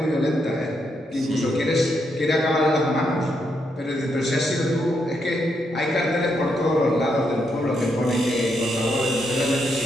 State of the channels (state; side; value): normal; both; correlation 0.79